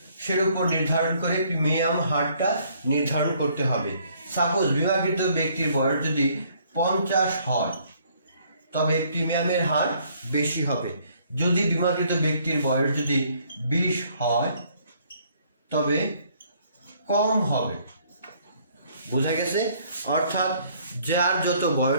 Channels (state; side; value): inverted; both; correlation -0.64